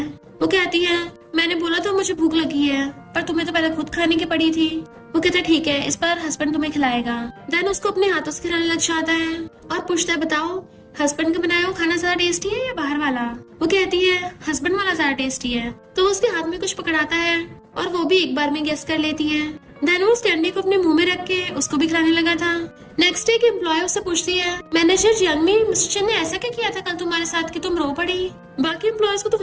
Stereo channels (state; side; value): identical; both; correlation 1.00